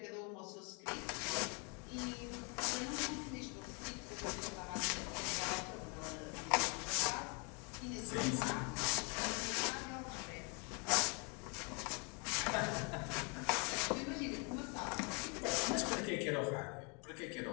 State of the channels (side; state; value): right; quieter; 34.1 dB